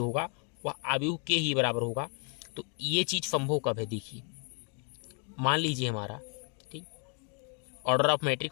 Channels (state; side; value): quieter; right; 38.3 dB